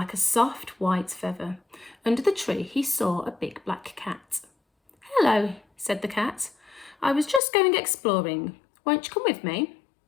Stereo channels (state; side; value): drops out; right; at 7.4 s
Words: a soft white feather. Under the tree, he saw a big black cat. "Hello," said the cat. "I was just going exploring. Won't you come with me?"